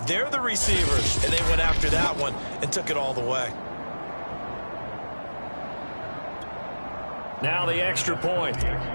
they're the receivers, and they went after that one and took it all the way. Now the extra point.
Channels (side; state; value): both; inverted; correlation -1.00